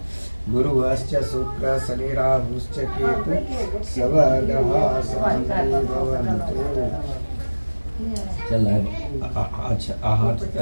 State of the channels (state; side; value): inverted; both; correlation -1.00